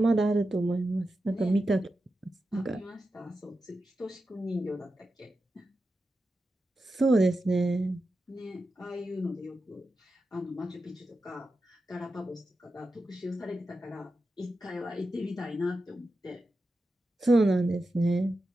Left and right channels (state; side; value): normal; both; correlation 0.90